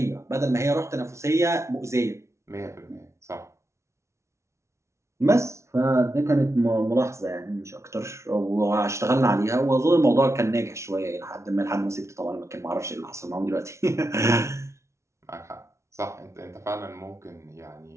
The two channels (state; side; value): late; left; 0.13 ms